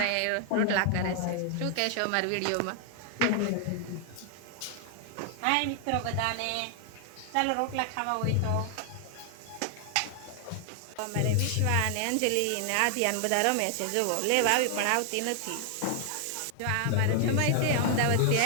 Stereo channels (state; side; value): different; both; correlation 0.00